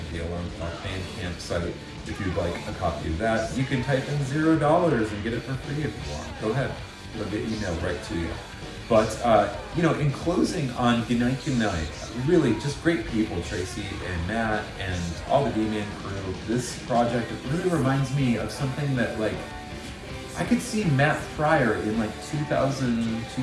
the Alarm Comp Bandcamp site. If you'd like a copy of that, you can type in $0 and get it for free if you want. Go ahead, it'll get emailed right to you. But, in closing on gNIght gNIgHT, really just great people, Tracey and Matt and all the D-Man crew. This project, it really reminds me of something that, I could see Matt Pryor in 2000,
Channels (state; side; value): identical; both; correlation 1.00